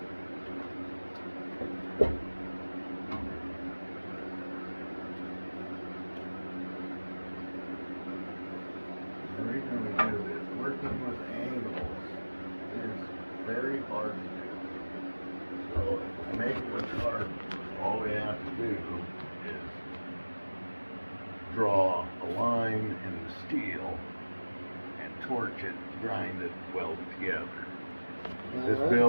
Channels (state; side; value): inverted; both; correlation -1.00